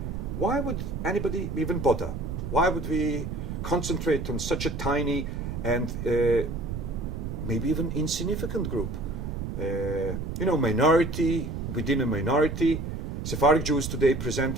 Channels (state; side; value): noise; right; rumble, 5 dB below the sound